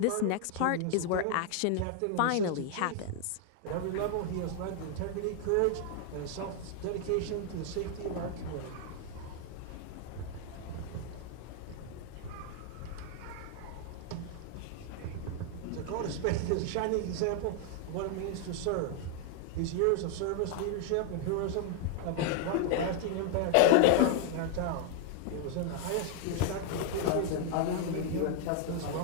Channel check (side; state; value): both; different; correlation 0.00